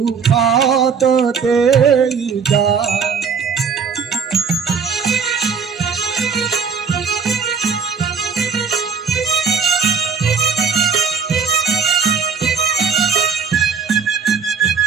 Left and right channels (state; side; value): quieter; left; 6.0 dB